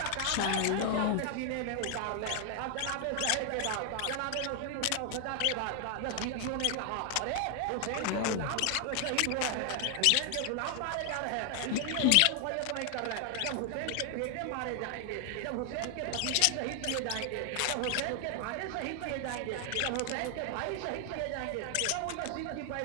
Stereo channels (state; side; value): different; both; correlation 0.00